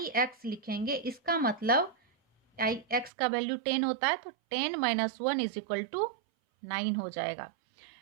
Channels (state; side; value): drops out; left; at 3.1 s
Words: एक्स लिखेंगे इसका मतलब आई एक्स का वैल्यू 10 होता है, तो 10 - 1 = 9 हो जाएगा।